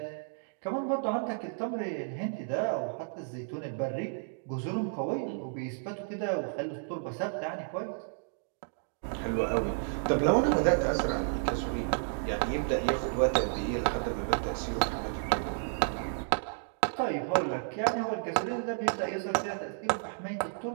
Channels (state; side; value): silent; left; digital silence